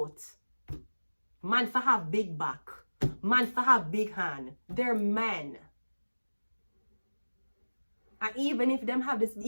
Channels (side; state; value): both; inverted; correlation -1.00